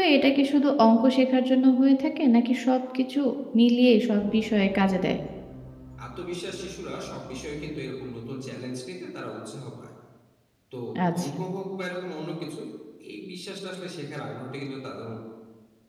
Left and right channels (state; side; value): identical; both; correlation 1.00